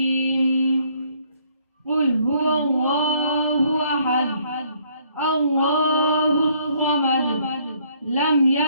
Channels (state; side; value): inverted; both; correlation -0.66